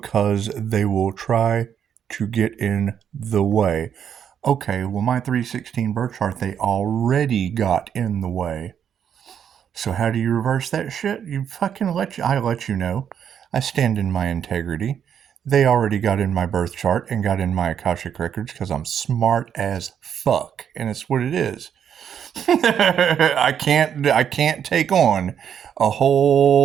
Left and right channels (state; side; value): quieter; left; 8.6 dB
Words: they will try to get in the way. Okay, well, my 316 birth chart, they already got in the way. So how do you reverse that shit? You fucking I let you know. I stand in my integrity. They already got in my birth chart and got in my Akashic records because I'm smart as fuck, and it's what it is. I can't take on a